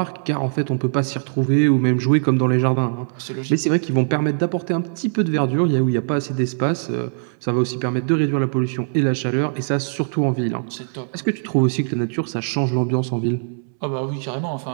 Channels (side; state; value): left; silent; 65 dB below the other